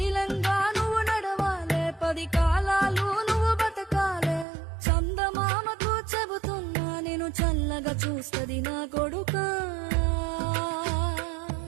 నువ్వు నడవాలే, 10 కాలాలు నువ్వు బతకాలే. చందమామకు చెబుతున్నా నేను చల్లగా చూస్తది నా కొడుకా.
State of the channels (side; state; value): left; drops out; at 4.5 s